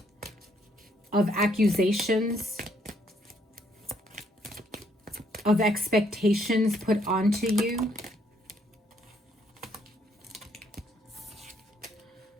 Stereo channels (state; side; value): normal; both; correlation 0.69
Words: of accusations, of expectations put onto you.